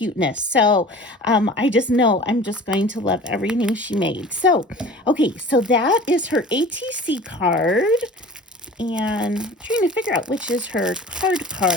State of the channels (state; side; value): normal; both; correlation 0.42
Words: So I just know I'm just going to love everything she made. So, okay, so that is her ATC card. And I'm trying to figure out which is her